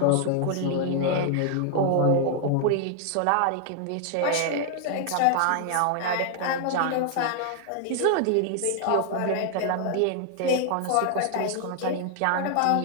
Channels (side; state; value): both; different; correlation 0.00